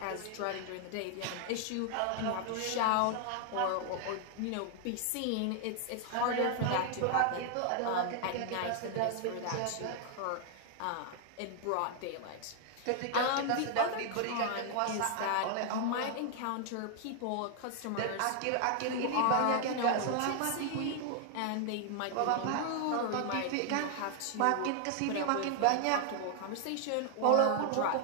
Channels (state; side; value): different; both; correlation 0.00